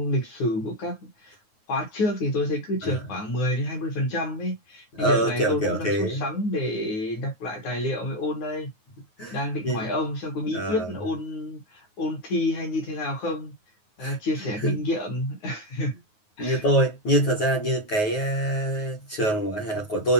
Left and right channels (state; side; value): late; right; 9.4 ms